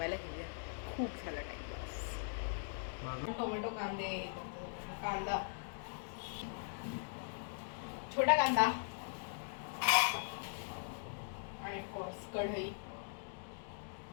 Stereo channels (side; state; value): right; silent; digital silence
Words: घेऊया. खूप झाला टाइमपास. टोमॅटो, कांदा, छोटा कांदा आणि ऑफकोर्स कढई.